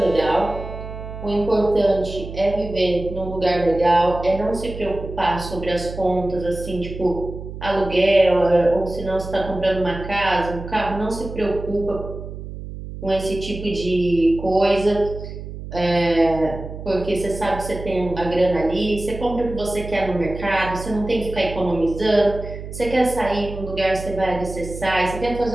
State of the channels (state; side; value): noise; right; hum, 10 dB below the sound